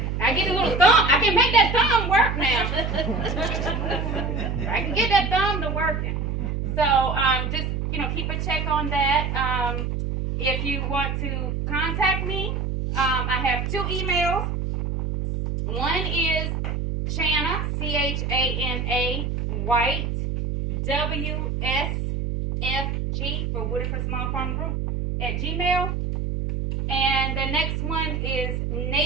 I get a little thumb. I can make that thumb work now. I can get that thumb to working. So just keep a check on that. If you want to contact me, I have 2 emails. One is Chana, Chana White, WSFG for Whitaker Small Farm Group at Gmail. And the next one is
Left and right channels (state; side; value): noise; right; hum, 1 dB below the sound